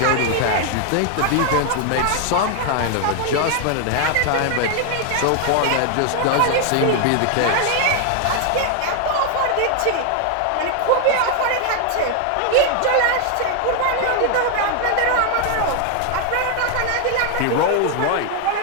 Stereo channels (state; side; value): different; both; correlation 0.00